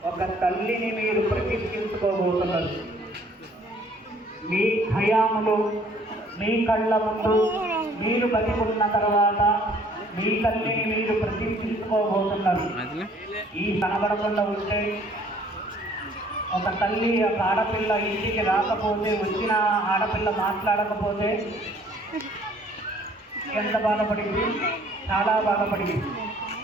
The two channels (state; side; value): normal; both; correlation 0.58